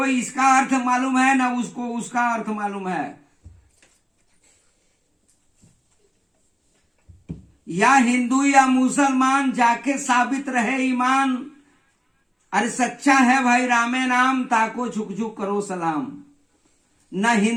इसका अर्थ मालूम है, न उसको उसका अर्थ मालूम है। या हिंदू या मुसलमान जाके साबित रहे ईमान, अरे सच्चा है भाई रामे नाम, ताको झुक झुक करो सलाम। न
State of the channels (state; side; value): identical; both; correlation 1.00